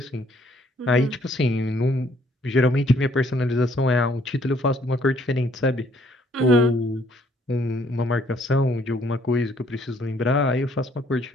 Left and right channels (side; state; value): both; normal; correlation 0.64